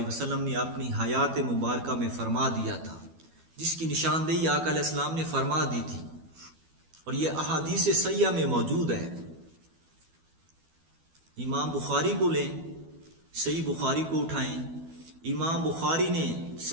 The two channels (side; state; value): left; late; 12 ms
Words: وسلم نے اپنی حیات مبارکہ میں فرما دیا تھا، جس کی نشاندہی آقا علیہ السلام نے فرما دی تھی، اور یہ احادیث صحیحہ میں موجود ہے۔ امام بخاری کو لیں، صحیح بخاری کو اٹھائیں، امام بخاری نے